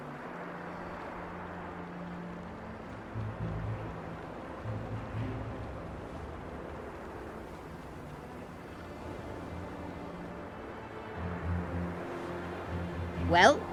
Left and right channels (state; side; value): identical; both; correlation 1.00